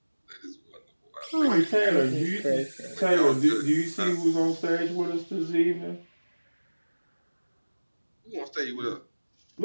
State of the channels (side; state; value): both; inverted; correlation -1.00